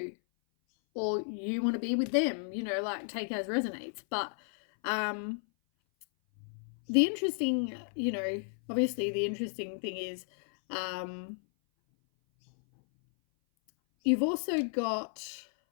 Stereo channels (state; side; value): silent; right; 56 dB below the other